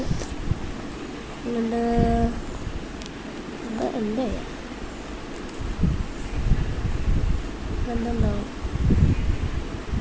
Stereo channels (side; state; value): both; identical; correlation 1.00